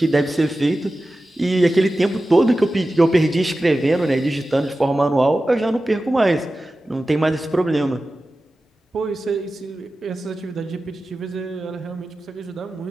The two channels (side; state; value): both; normal; correlation 0.94